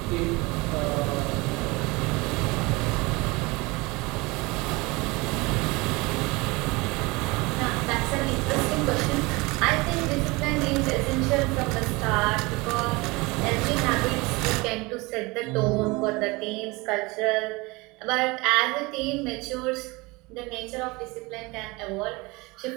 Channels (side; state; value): left; quieter; 24.4 dB